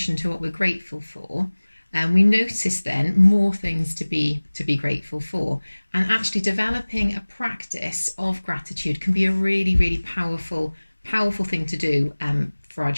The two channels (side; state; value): both; inverted; correlation -1.00